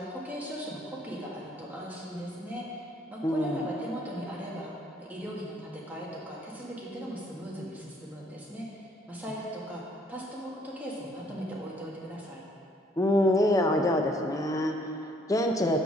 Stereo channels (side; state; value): both; normal; correlation 0.64